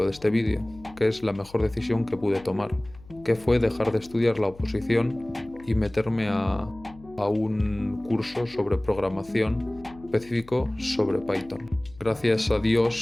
de este vídeo, que es la mejor decisión que pude tomar, que fue dejar de estudiar la oposición y meterme a un curso sobre programación específico sobre Python. Gracias a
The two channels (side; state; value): left; noise; hum, 22 dB below the sound